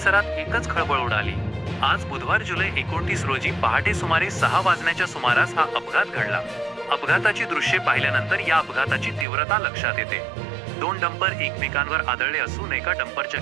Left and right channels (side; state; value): left; drops out; at 9.2 s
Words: एकच खळबळ उडाली. आज बुधवार जुलै 29 रोजी पहाटे सुमारे 6 वाजण्याच्या सुमारास हा अपघात घडला. अपघाताची दृश्ये पाहिल्यानंतर या अपघाताची तीव्रता लक्षात येते. 2 डंपर एकमेकांवर आदळले असून एका डंपरच्या